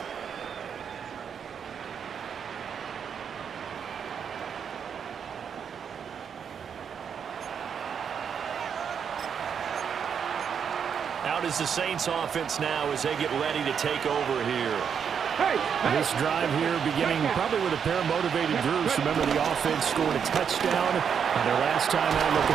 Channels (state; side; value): quieter; left; 7.3 dB